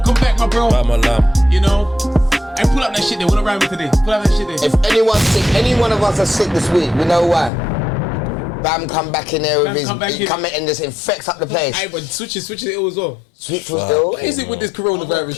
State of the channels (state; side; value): drops out; right; at 7.5 s